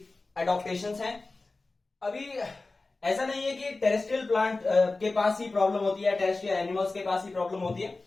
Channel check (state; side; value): quieter; right; 3.4 dB